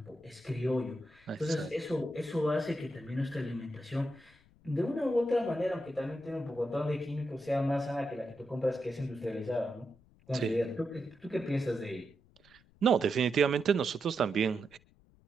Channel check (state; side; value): noise; left; rumble, 29 dB below the sound